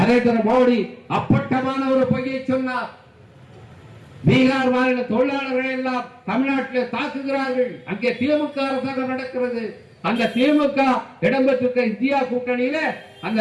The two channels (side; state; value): both; identical; correlation 1.00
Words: மோடி அப்பட்டமான ஒரு பொய்யை சொன்னார். பீகார் மாநில தொழிலாளர்கள் எல்லாம் தமிழ்நாட்டில் தாக்குகிறார்கள். அங்கே திமுக அரசாங்கம் நடக்கிறது. அந்த திமுக இடம்பெற்றிருக்க இந்தியா கூட்டணியில